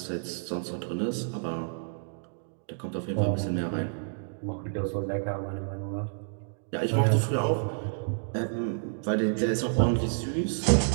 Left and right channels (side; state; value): left; silent; digital silence